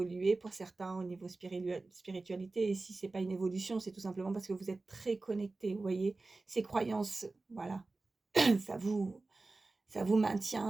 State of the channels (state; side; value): quieter; left; 3.4 dB